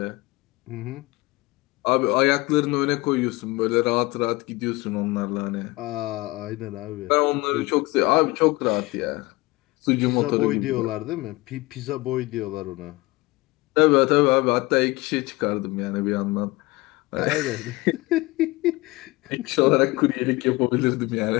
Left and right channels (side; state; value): right; quieter; 22.0 dB